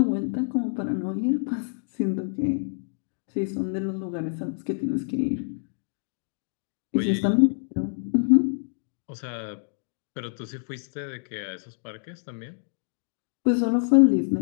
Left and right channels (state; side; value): silent; right; digital silence